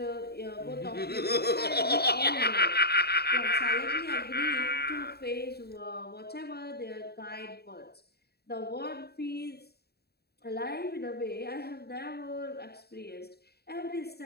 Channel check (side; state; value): right; late; 0.47 ms